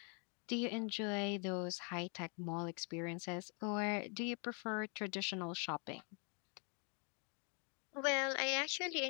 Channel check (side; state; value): right; quieter; 38.8 dB